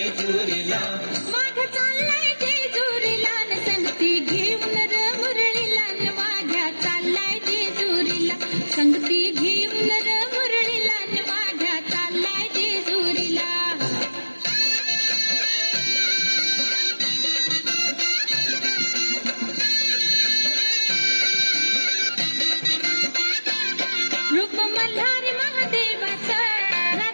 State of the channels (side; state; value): both; inverted; correlation -1.00